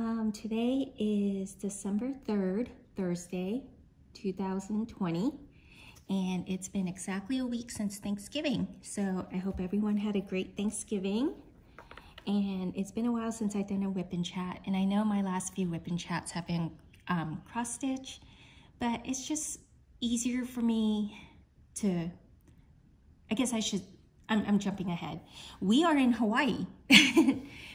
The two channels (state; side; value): identical; both; correlation 1.00